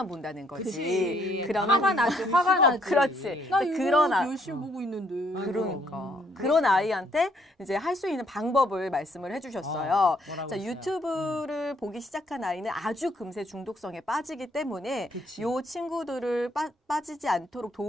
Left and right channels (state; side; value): normal; both; correlation 0.68